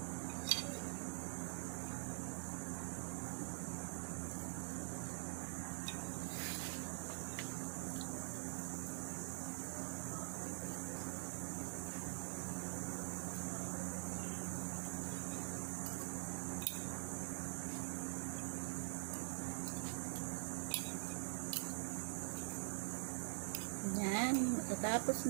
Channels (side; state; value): left; quieter; 39.9 dB